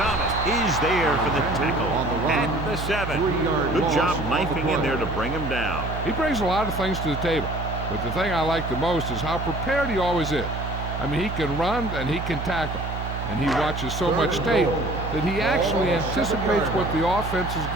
is there for the tackle at the 7. Good job knifing in there to bring him down. He brings a lot of things to the table, but the thing I like the most is how prepared he always is. I mean, he can run and he can tackle, and he watches so much tape that he actually anticipates what the offense is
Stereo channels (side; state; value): right; noise; hum, 5 dB below the sound